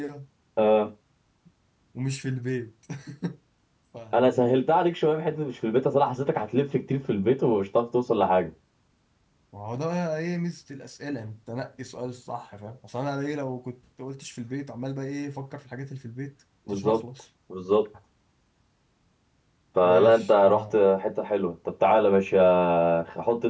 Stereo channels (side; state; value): both; identical; correlation 1.00